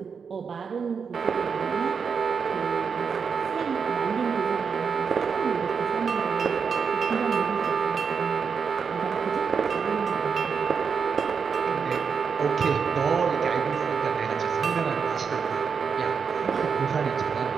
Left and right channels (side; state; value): left; quieter; 6.0 dB